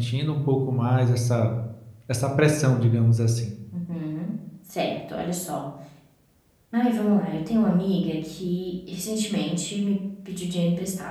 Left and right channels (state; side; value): identical; both; correlation 1.00